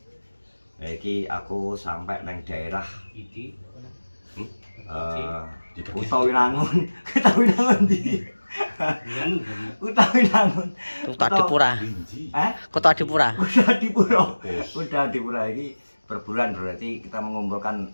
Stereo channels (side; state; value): both; inverted; correlation -1.00